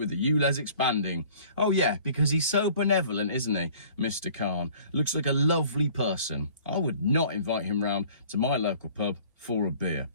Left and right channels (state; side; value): inverted; both; correlation -0.51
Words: the ULEZ expanding. Oh yeah, because he's so benevolent, isn't he, Mr. Khan? Looks like a lovely person. I would not invite him round to my local pub for a beer.